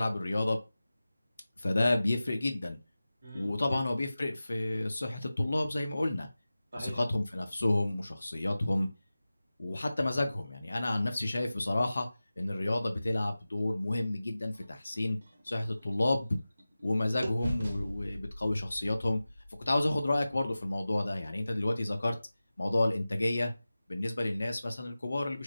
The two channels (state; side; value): inverted; both; correlation -0.96